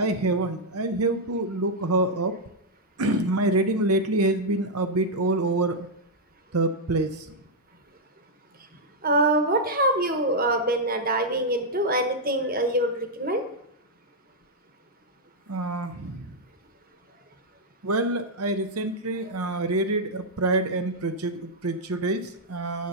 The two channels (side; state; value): both; normal; correlation -0.03